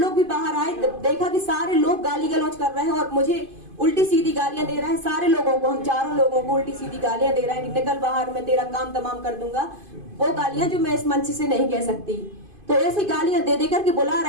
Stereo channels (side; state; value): left; late; 2.5 ms